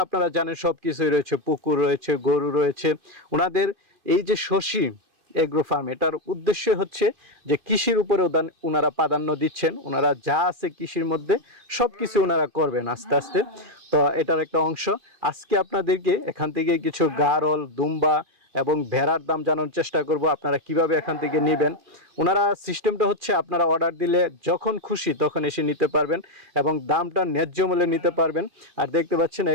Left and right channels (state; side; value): late; left; 2.4 ms